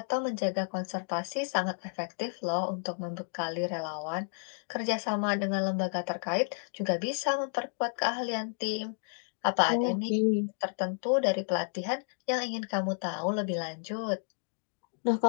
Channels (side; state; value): right; silent; digital silence